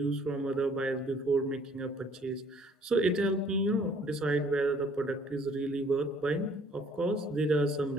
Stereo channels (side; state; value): both; normal; correlation 0.59